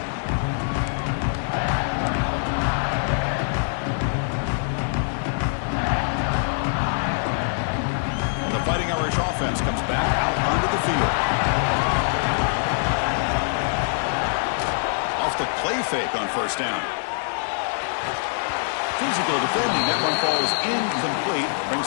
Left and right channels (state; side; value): silent; right; 63 dB below the other